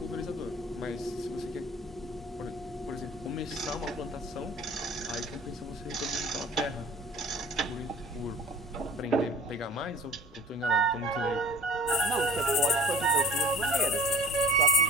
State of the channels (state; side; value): normal; both; correlation 0.46